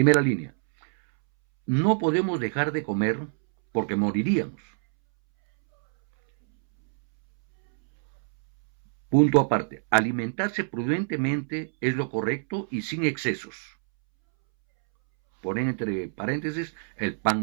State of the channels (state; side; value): silent; left; 61 dB below the other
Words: línea. No podemos dejar de comer porque moriríamos. Punto aparte. Alimentarse prudentemente es lo correcto y sin excesos. ponen entre paréntesis el